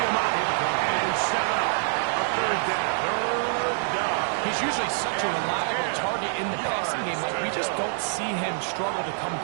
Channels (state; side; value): silent; left; digital silence